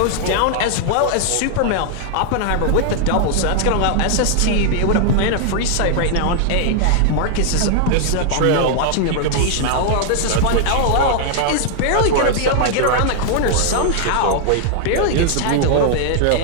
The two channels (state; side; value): different; both; correlation 0.00